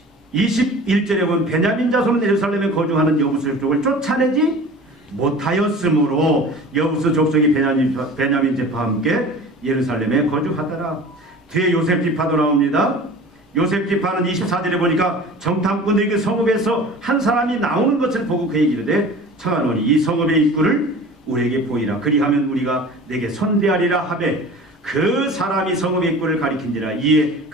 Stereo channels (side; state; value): both; normal; correlation 0.40